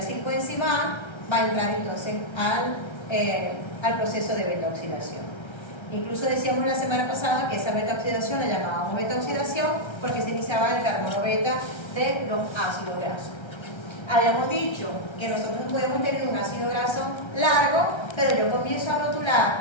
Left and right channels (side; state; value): right; late; 1.3 ms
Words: A, va a entrar entonces al proceso de beta-oxidación. Incluso decíamos la semana pasada que esa beta-oxidación la llamábamos beta-oxidación porque se iniciaba el carbono beta de los ácidos grasos. Habíamos dicho que nosotros podemos tener un ácido graso largo, pero yo comienzo a